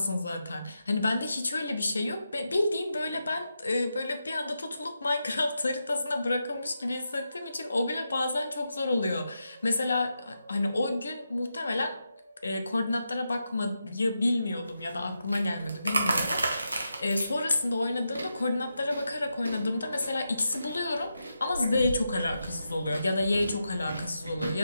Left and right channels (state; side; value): inverted; both; correlation -0.87